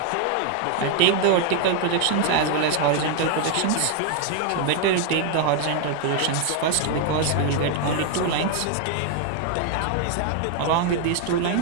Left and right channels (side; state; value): both; different; correlation 0.01